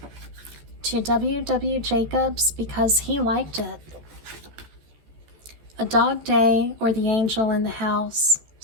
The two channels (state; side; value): late; left; 14 ms